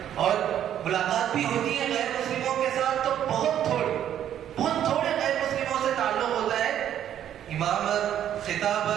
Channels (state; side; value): quieter; left; 10.5 dB